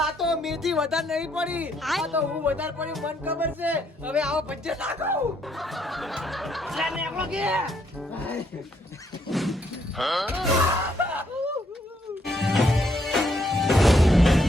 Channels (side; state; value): both; normal; correlation 0.72